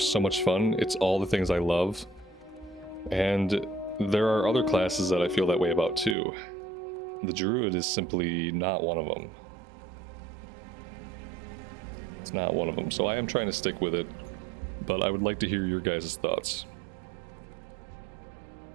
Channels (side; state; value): left; drops out; at 6.2 s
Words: so much fun. It's all the things I love. And there are other classes that I feel that way about too. The Druid is simply not one of them. It's not one of them. So I am trying to stick with it. But I would like to hear your guys' thoughts. Time is money,